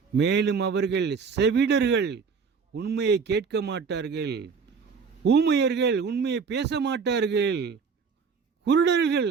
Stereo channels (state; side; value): quieter; left; 5.6 dB